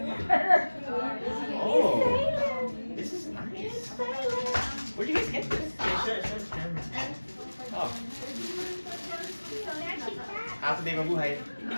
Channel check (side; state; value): both; inverted; correlation -1.00